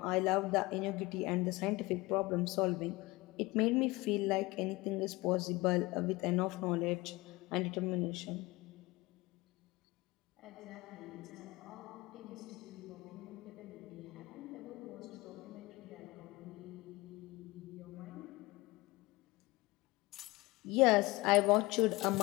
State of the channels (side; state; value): right; quieter; 22.1 dB